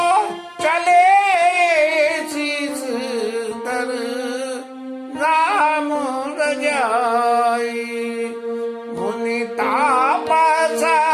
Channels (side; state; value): both; identical; correlation 1.00